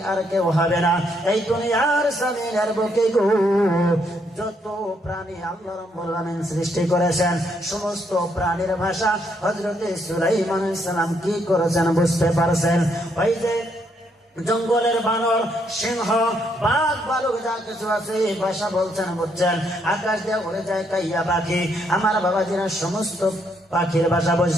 আর কেউ হবে না এই দুনিয়ার জমিনের বুকে গো। যত প্রাণী আল্লাহ রাব্বুল আলামিন সৃষ্টি করেছেন, সমস্ত প্রাণীর ভাষা হযরত সুলাইমান আলাইহিস সালাম কি করেছেন বুঝতে পারছেন? ওই যে জঙ্গলের বানর, সিংহ, বাঘ, ভালুক যা কিছু আছে ভাষা বলছেন বুঝছেন। আকাশ দিয়ে উড়ে যায় কাইয়া পাখি, আমার বাবাজিরা সমস্ত পাখির ভাষা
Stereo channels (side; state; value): both; normal; correlation 0.73